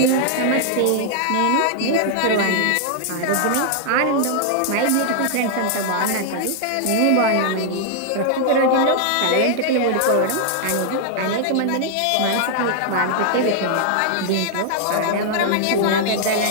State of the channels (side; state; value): both; different; correlation -0.01